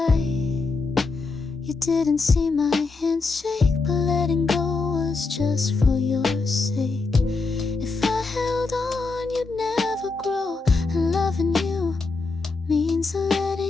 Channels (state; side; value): quieter; right; 4.0 dB